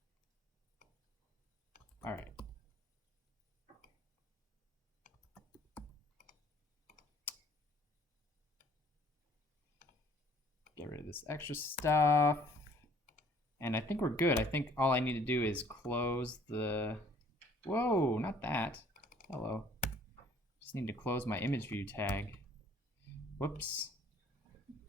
All right. Get rid of this extra stuff. And I think we're good. I think all I need to do is close the... Whoa, not that. Hello. Just need to close my image view tag. Whoops.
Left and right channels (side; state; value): both; normal; correlation 0.57